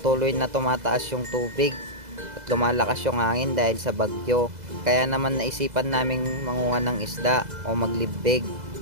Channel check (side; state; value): left; late; 2.0 ms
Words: na tumataas yung tubig at lumalakas yung hangin dahil sa bagyo. Kaya naman naisipan naming manguha ng isda o maglibig.